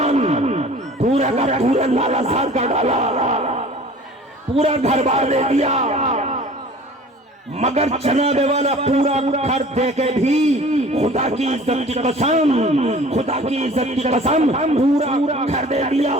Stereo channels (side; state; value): both; normal; correlation 0.46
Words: पूरा का पूरा लालासार का डाला, पूरा घर बार दे दिया, मगर जनाबे वाला पूरा घर दे के भी खुदा की इज्जत की कसम, खुदा की इज्जत की कसम, पूरा घर दे दिया।